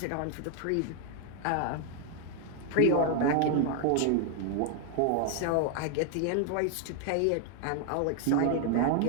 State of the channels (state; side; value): different; both; correlation 0.00